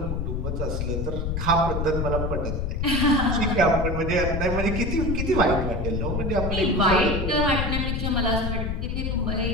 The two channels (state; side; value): noise; left; rumble, 1 dB below the sound